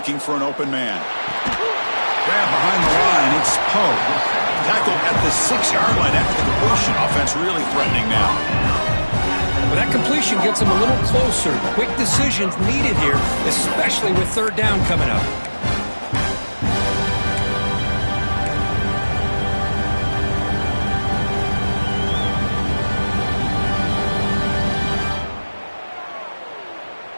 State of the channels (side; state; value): both; inverted; correlation -1.00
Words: for an open man. Grab behind the line, it's Poe. Tackled at the 6-yard line after the completion. Offense really threatening now. Well, that completion gets them a little closer. Quick decisions needed here, especially with third down coming up.